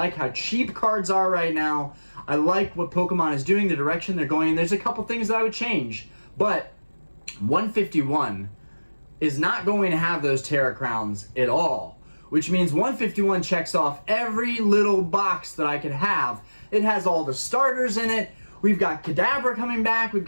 how cheap cards are right now. I like what Pokemon is doing, the direction they're going in. There's a couple things that I would change. But 151 is not going to have those Terra Crowns at all, which means 151 checks off every little box that I could have. It has all the starters in it. We've got Kadabra coming back. We've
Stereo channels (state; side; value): inverted; both; correlation -1.00